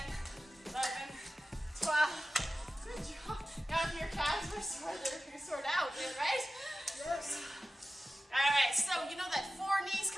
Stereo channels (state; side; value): normal; both; correlation 0.95